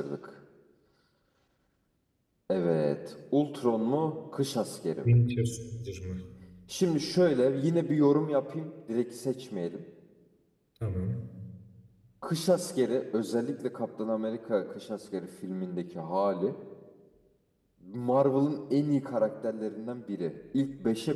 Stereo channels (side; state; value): both; identical; correlation 1.00